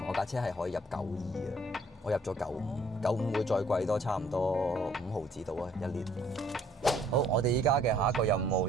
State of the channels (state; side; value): normal; both; correlation 0.61